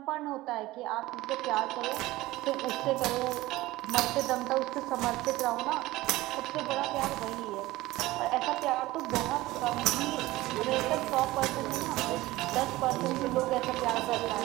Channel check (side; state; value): left; quieter; 18.2 dB